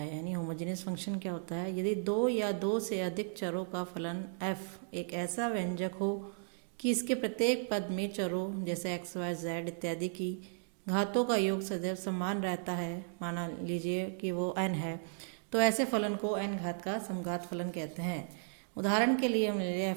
यानी होमोजेनियस फंक्शन क्या होता है। यदि दो या दो से अधिक चरों का फलन f एक ऐसा व्यंजक हो कि इसके प्रत्येक पद में चरों जैसे x, y, z इत्यादि की घातों का योग सदैव समान रहता है, माना लीजिए कि वो n है, तो ऐसे फलन को n घात का समघात फलन कहते हैं। उदाहरण के लिए हम ले लिया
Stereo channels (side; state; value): left; silent; digital silence